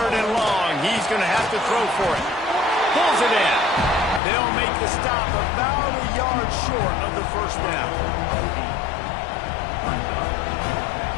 and long, he's going to have to throw for it. Pulls it in. They'll make the stop about a yard short of the first down.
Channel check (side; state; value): right; drops out; at 4.2 s